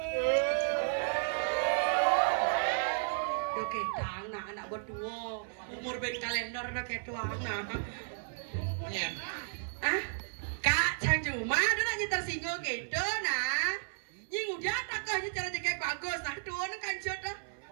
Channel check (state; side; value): silent; left; 55 dB below the other